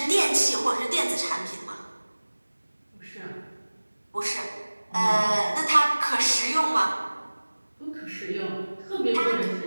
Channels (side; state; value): both; inverted; correlation -1.00